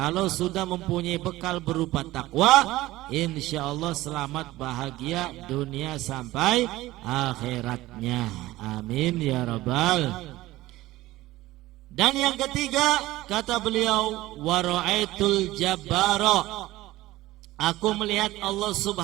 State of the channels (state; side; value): quieter; left; 17.3 dB